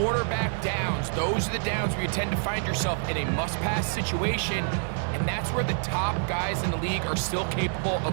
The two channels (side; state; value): left; silent; digital silence